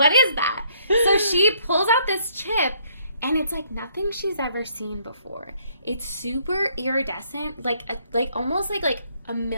is that? So she pulls out this chip, and it's, like, nothing she's ever seen before. It's super iridescent, like almost like a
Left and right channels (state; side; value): inverted; both; correlation -0.67